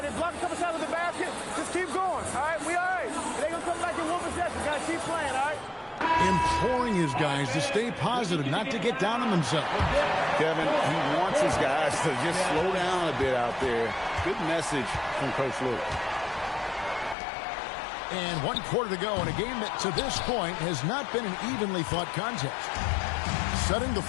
They block a couple shots of the basket. Just keep going, all right? We all right. They're going to come back in one possession. Got to keep playing, all right? Imploring his guys to stay positive, not to get down on themselves. Kevin, he wants his guys to just slow down a bit out there. Good message from Coach Lue. And 1 quarter to go in a game that to this point has not been an evenly fought contest. Setting the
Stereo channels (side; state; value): right; drops out; at 17.2 s